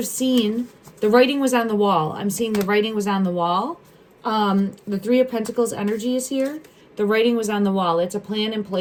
seen. The writing was on the wall. I'm seeing the writing was on the wall. The Three of Pentacles energy is here. The writing was on the wall. It's a plan in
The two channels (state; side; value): identical; both; correlation 1.00